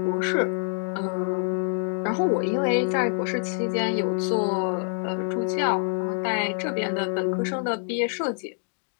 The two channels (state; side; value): silent; right; digital silence